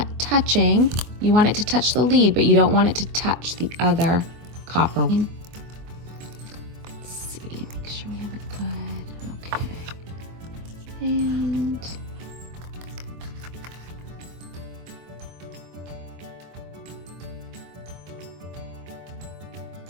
touching. You want it to touch the lead, but you don't want it to touch the other copper. Let's see, make sure we have it good. Okay. And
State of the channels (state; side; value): late; left; 24 ms